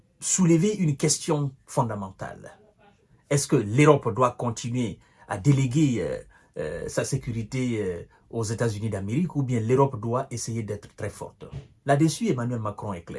soulever une question fondamentale. Est-ce que l'Europe doit continuer à déléguer sa sécurité aux États-Unis d'Amérique ou bien l'Europe doit essayer d'être très forte? Là-dessus, Emmanuel Macron est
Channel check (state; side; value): identical; both; correlation 1.00